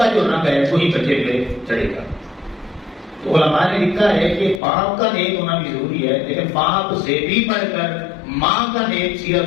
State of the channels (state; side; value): drops out; right; at 4.6 s